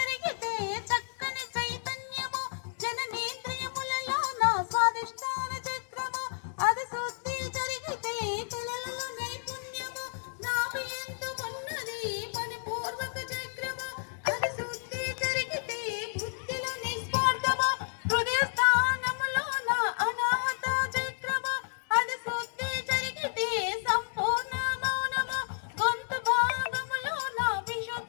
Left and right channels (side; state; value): right; silent; 57 dB below the other